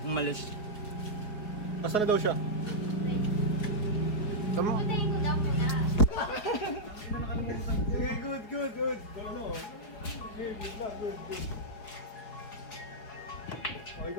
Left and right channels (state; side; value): late; right; 4.9 ms